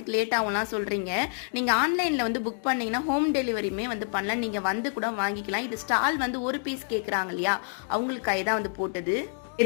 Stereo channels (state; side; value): silent; right; 58 dB below the other